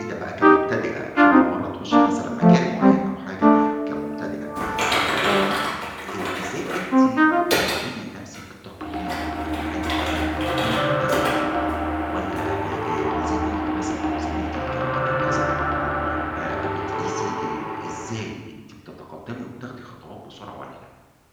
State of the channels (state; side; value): identical; both; correlation 1.00